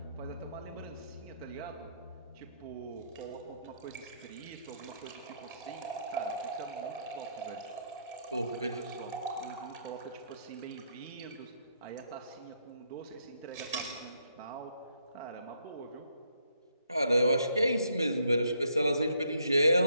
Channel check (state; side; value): inverted; both; correlation -0.73